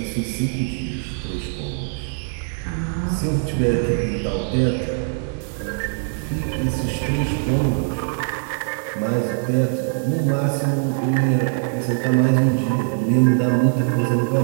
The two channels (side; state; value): left; silent; digital silence